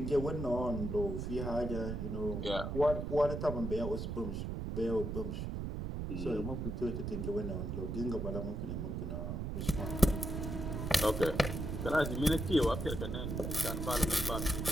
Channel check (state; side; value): noise; right; rumble, 3 dB below the sound